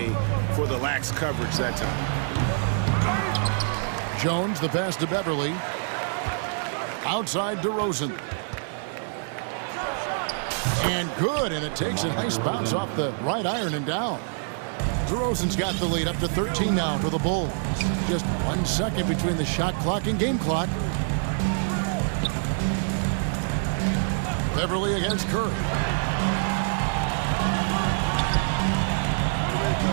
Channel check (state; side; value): silent; left; 61 dB below the other